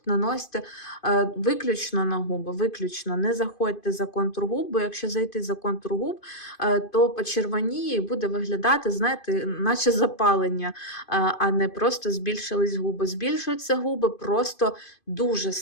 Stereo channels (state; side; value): late; right; 2.5 ms